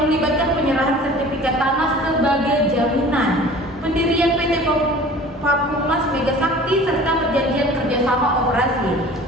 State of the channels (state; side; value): normal; both; correlation 0.44